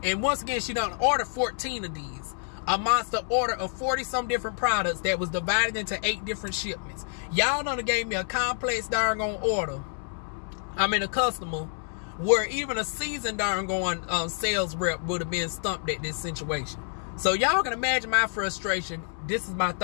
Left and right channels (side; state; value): right; silent; 59 dB below the other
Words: And once again, she done order 14 of these. A monster order of 40 some different products that was divided into 8 different shipments. Y'all done gave me a complex darn order. I mean a customer where even a seasoned darn sales rep would have been stumped at this situation. So y'all can imagine my frustration. This is my